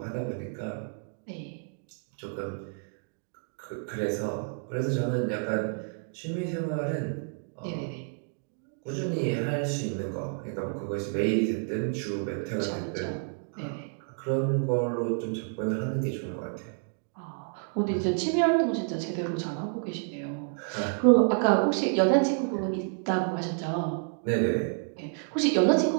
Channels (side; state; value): left; silent; 58 dB below the other